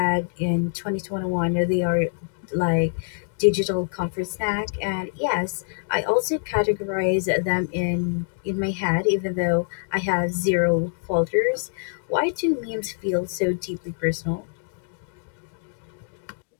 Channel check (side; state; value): right; silent; digital silence